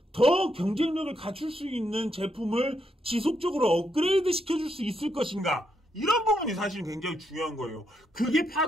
더 경쟁력을 갖출 수 있는 제품을 지속적으로 업그레이드 시켜줄 수 있을 것인가 이런 부분이 사실 굉장히 중요한 거예요. 그게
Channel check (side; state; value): both; normal; correlation 0.79